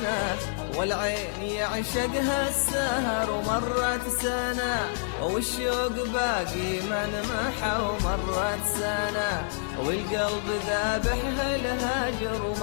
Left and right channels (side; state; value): right; silent; digital silence